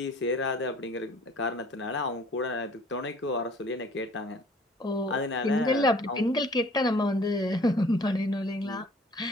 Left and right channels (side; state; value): both; normal; correlation 0.53